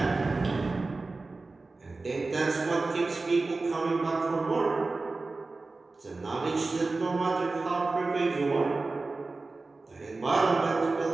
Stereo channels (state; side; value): quieter; left; 3.6 dB